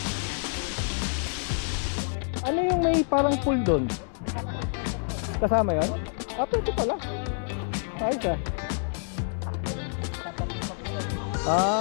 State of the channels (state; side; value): silent; right; 60 dB below the other